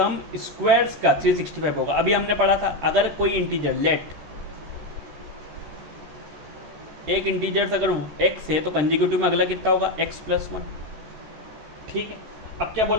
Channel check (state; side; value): late; left; 13 ms